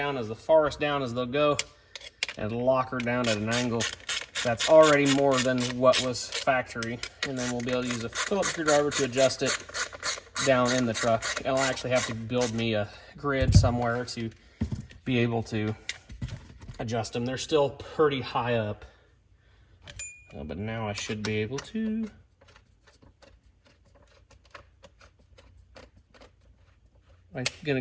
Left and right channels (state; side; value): identical; both; correlation 1.00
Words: as far down as they'll go and lock her down at an angle that's already more than what was factory. And then we'll be able to use a Phillips screwdriver to adjust it down in the truck. I'll actually have to build me a grid somewhere to be able to adjust them. They're still pretty high up, but now I should be able to. I'm gonna